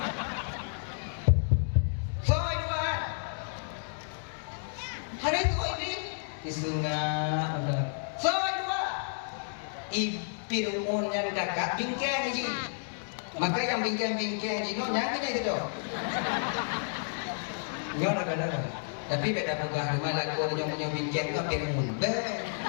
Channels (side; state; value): right; silent; digital silence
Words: Hari itu iblis disengah udah. Dua. Fir'aun yang kakak bingkang aja. Maka yang bingkang-bingkang aja nyang kita itu. Nyo nak ada. Tapi beda pegah rumah laku ada yang punya bingkang kau Fir'aun.